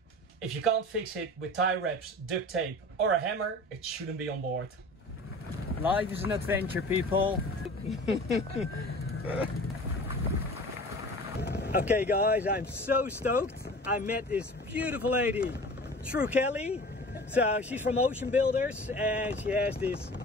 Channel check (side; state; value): both; normal; correlation 0.40